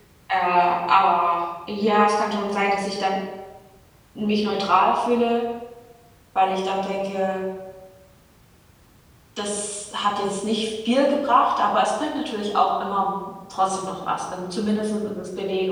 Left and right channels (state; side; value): identical; both; correlation 1.00